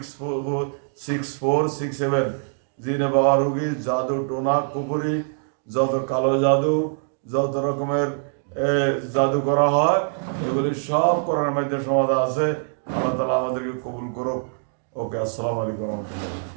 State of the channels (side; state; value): left; silent; digital silence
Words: জিনে বাবা রোগী, জাদু টোনা কুপুরি, যত কালো জাদু, যত রকমের জাদু করা হয়, এগুলি সব করার মধ্যে সমাধান আছে। আল্লাহ তাআলা আমাদেরকে কবুল করুক। ওকে, আসসালামু আলাইকুম রহমতুল্লাহ।